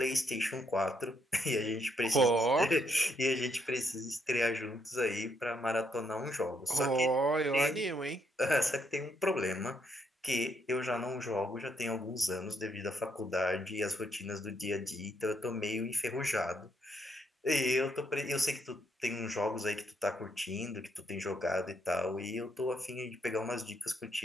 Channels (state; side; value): normal; both; correlation 0.75